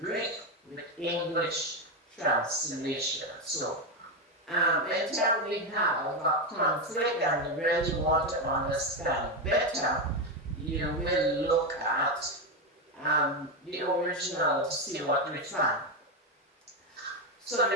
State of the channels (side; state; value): both; normal; correlation 0.09